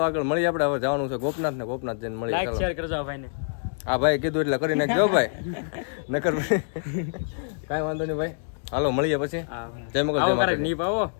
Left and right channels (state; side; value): silent; right; digital silence